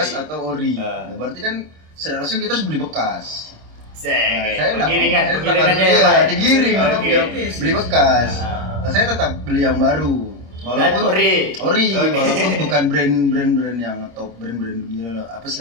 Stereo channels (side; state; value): left; late; 26 ms